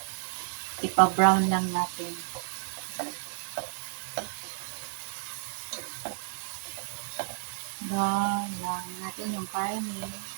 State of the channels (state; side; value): silent; left; digital silence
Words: Ipa-brown lang natin. Brown lang natin yung karne.